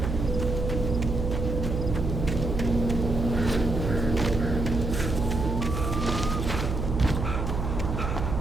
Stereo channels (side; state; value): right; noise; hum, 2 dB below the sound